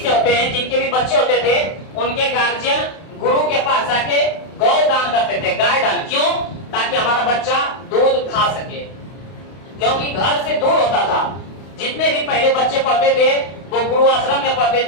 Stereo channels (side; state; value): right; late; 32 ms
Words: होते हैं, जिनके भी बच्चे होते थे, उनके गार्जियन गुरु के पास आके गौ दान करते थे, गाय दान। क्यों? ताकि हमारा बच्चा दूध खा सके, क्योंकि घर से दूर होता था। जितने भी पहले बच्चे पढ़ते थे वो गुरु आश्रम में पढ़ते